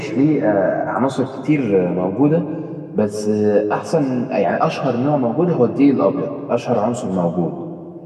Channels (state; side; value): identical; both; correlation 1.00